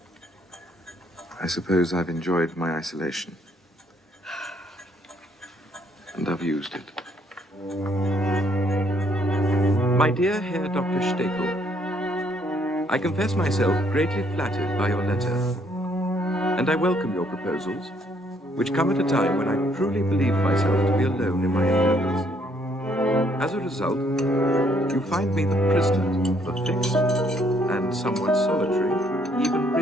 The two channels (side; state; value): both; normal; correlation 0.67